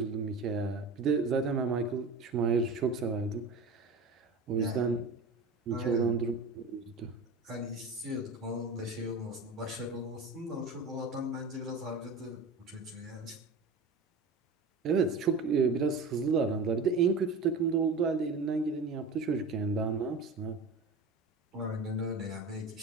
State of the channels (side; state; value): left; quieter; 3.7 dB